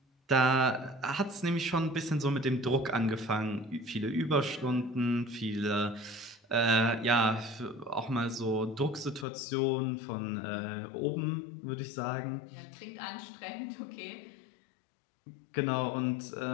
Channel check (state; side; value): drops out; right; at 9.2 s